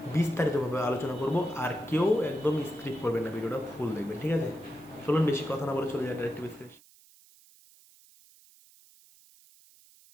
বিস্তারিতভাবে আলোচনা করব। আর কেউ একদম স্ক্রিপ্ট করবেন না, ভিডিওটা ফুল দেখবেন, ঠিক আছে? চলুন বেশি কথা না বলে চলে যায় ডাইরেক্ট টিভি স্ক্রিন।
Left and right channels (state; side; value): noise; right; hiss, 26 dB below the sound